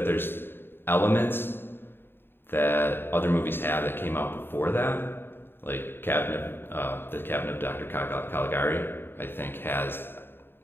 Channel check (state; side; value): late; right; 0.10 ms